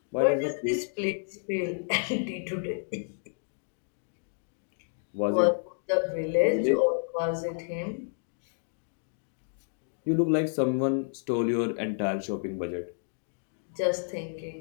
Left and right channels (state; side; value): silent; right; digital silence